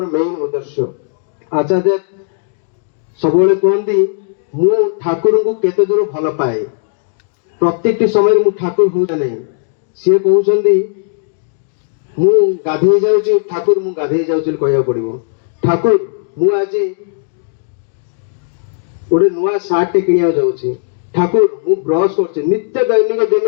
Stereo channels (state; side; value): silent; right; digital silence